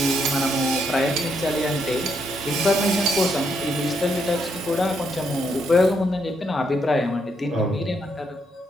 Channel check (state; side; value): normal; both; correlation 0.76